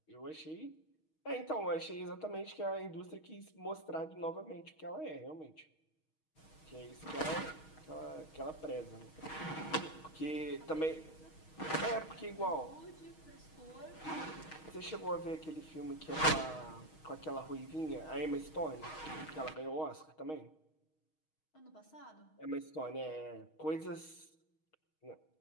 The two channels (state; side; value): late; right; 6.4 ms